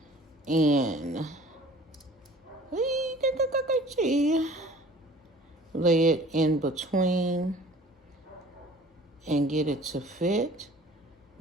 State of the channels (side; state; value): both; normal; correlation 0.48